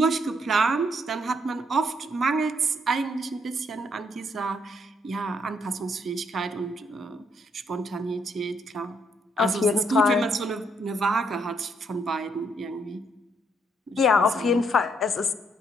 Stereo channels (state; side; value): normal; both; correlation 0.72